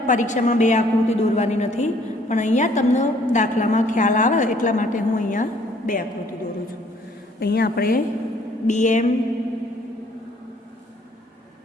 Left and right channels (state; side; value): normal; both; correlation 0.61